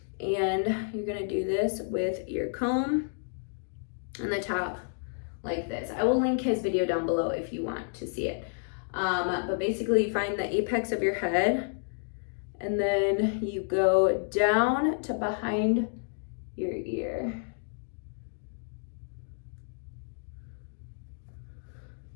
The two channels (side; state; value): right; silent; digital silence